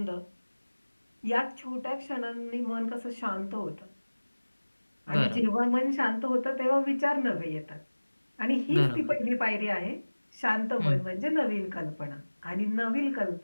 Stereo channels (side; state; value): both; inverted; correlation -1.00